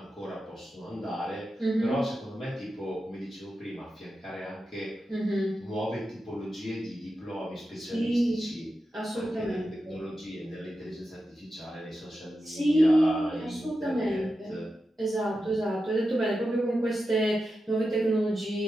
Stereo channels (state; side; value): normal; both; correlation 0.90